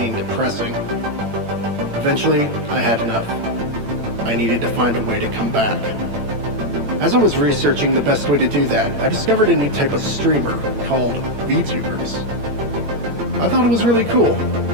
depressing. Eventually, I had enough. I needed to find a way to come back. As I was researching the best way to do that, I discovered a new type of streamer called vtubers. I thought it was really cool,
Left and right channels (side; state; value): left; late; 8.9 ms